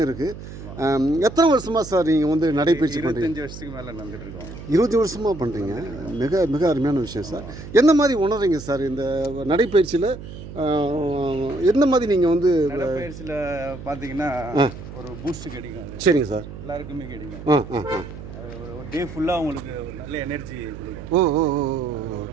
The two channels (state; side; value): noise; right; hum, 12 dB below the sound